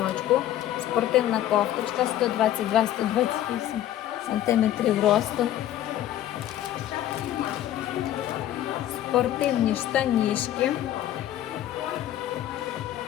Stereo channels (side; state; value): right; quieter; 12.5 dB